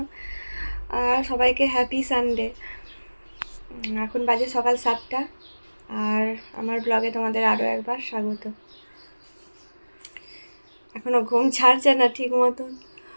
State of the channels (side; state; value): both; inverted; correlation -1.00